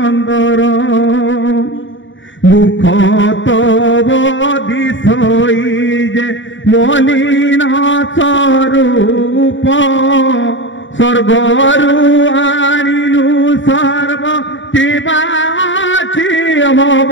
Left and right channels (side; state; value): right; late; 0.55 ms